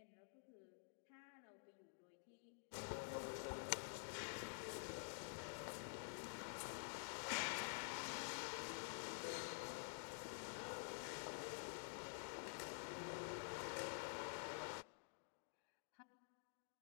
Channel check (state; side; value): silent; right; digital silence